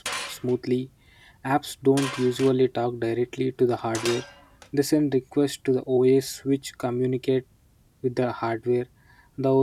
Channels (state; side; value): identical; both; correlation 1.00